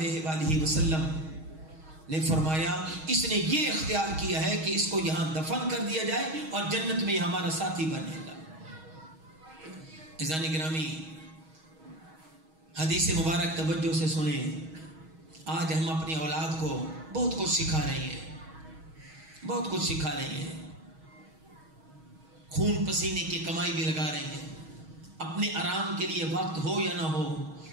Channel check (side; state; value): left; late; 6.3 ms